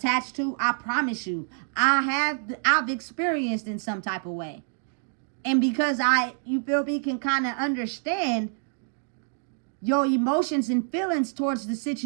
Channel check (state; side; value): silent; left; 59 dB below the other